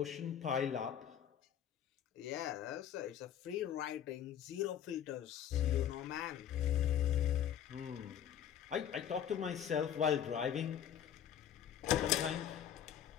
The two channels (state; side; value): quieter; right; 9.6 dB